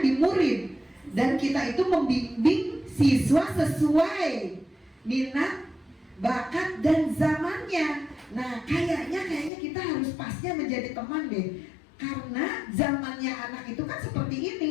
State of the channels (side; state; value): right; drops out; at 9.5 s